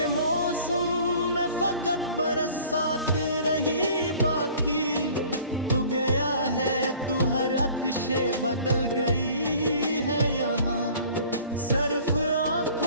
मौसम में फकत बरसात रही बाकी। तू गया है तू हर अक्शे बदल गई है यहाँ, सिर्फ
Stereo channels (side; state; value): both; inverted; correlation -0.50